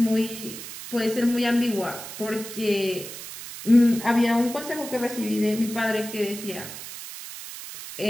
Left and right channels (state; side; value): noise; right; hiss, 11 dB below the sound